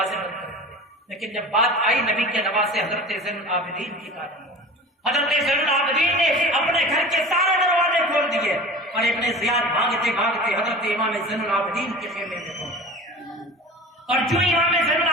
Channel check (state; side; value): normal; both; correlation 0.37